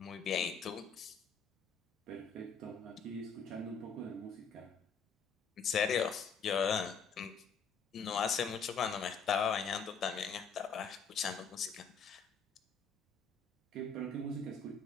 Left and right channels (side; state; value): right; quieter; 5.4 dB